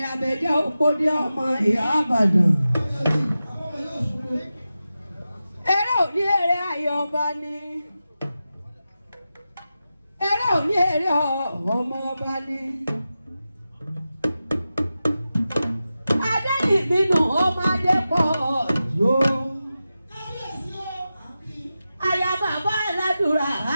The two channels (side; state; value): both; inverted; correlation -0.92